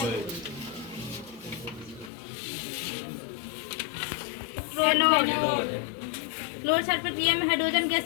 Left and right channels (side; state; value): right; drops out; at 2.1 s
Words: क्लोर क्षार प्रक्रिया में हाइड्रोजन गैस